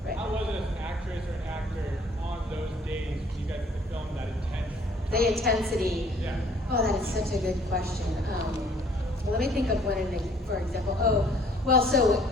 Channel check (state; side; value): normal; both; correlation 0.58